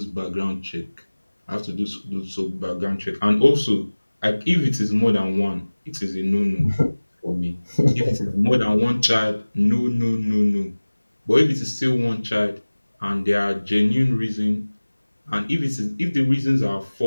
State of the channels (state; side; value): inverted; both; correlation -1.00